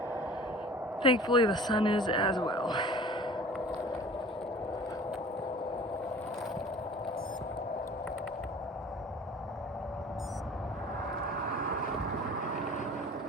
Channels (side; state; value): both; normal; correlation 0.45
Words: Thankfully the sun is as well.